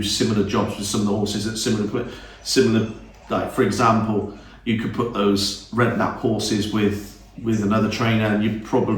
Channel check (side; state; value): both; identical; correlation 1.00